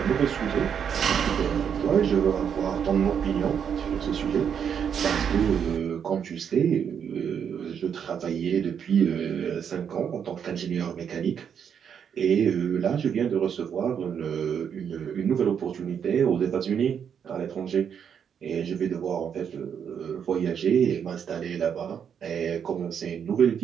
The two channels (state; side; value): quieter; left; 7.8 dB